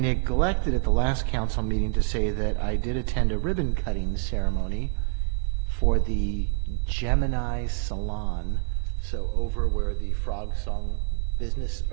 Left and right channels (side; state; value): left; silent; 56 dB below the other